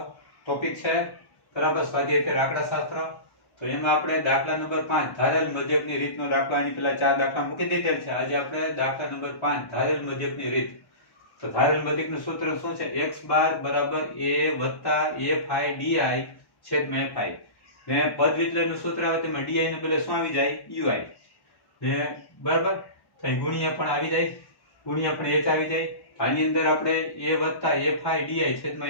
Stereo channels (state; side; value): late; right; 1.1 ms